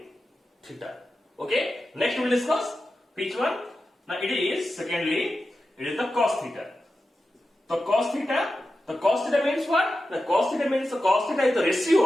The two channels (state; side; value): normal; both; correlation 0.92